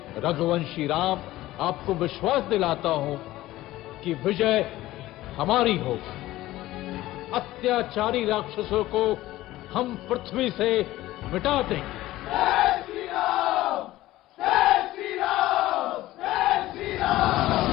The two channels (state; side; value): quieter; right; 16.2 dB